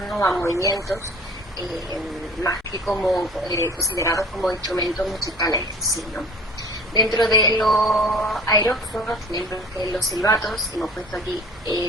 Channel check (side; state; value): both; normal; correlation 0.45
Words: ¿no? A movimientos, más que como considerados como instrumentos musicales en sí, ¿no? Dentro de los aerófonos tenemos los silbatos, hemos puesto aquí